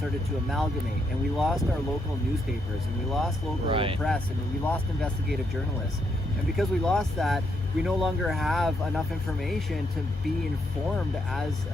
to amalgamate, and we lost our local newspapers, and we lost local press, and we lost investigative journalists. And because we lost that, we no longer have enough information to be informed as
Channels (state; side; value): normal; both; correlation 0.77